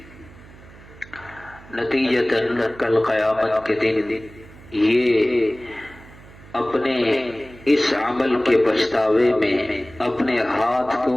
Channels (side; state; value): right; noise; hum, 21 dB below the sound